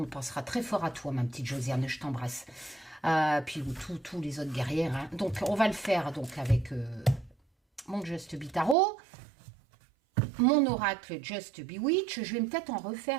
pensera très fort à toi, ma petite Josiane. Je t'embrasse. Puis tous les autres guerrières. Donc, on va le faire donc avec mon Just Be Tarot. Mon oracle Just Be Witch, je vais peut-être en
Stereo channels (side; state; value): left; drops out; at 8.8 s